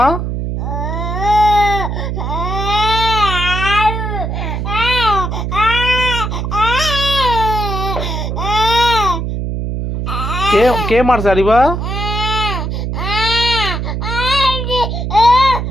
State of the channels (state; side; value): noise; right; hum, 3 dB below the sound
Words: কে কে মারছে হারিবা?